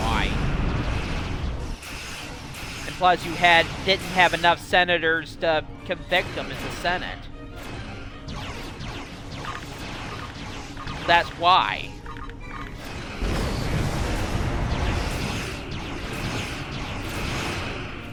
And plus, didn't have enough senators to convict him in the Senate. That's why.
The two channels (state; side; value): identical; both; correlation 1.00